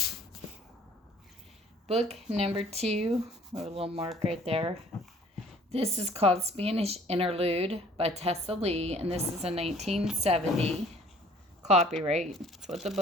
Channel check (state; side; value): normal; both; correlation 0.54